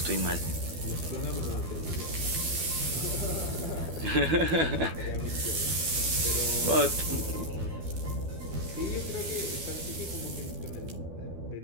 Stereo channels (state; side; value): late; left; 12 ms